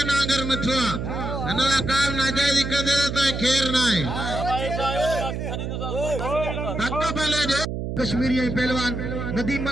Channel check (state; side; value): noise; right; hum, 4 dB below the sound